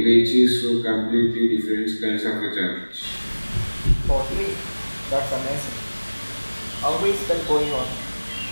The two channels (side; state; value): both; inverted; correlation -1.00